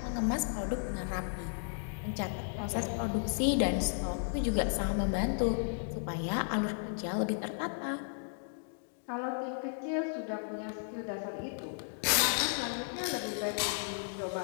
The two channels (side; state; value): right; silent; digital silence